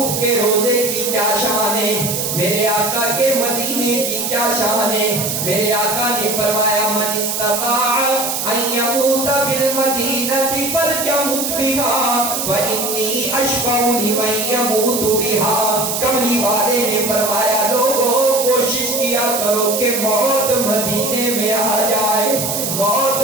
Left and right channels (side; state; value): right; noise; hiss, 2 dB below the sound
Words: کے روزے کی کیا شان ہے، میرے آقا کے مدینے کی کیا شان ہے۔ میرے آقا نے فرمایا من استطاع ان یموت بالمدینہ فلیمت بها فانی اشفع لمن یموت بها۔ کملی والے نے فرمایا لوگوں کوشش کیا کرو کہ موت مدینے میں آ جائے، موت